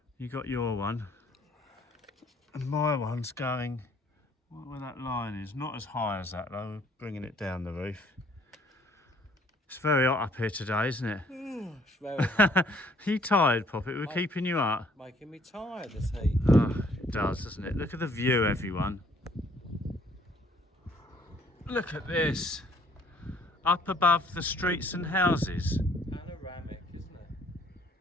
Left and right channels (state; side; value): normal; both; correlation 0.62